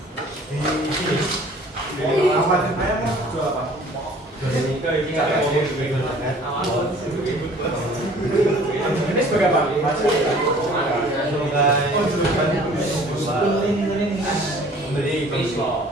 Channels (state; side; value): normal; both; correlation 0.51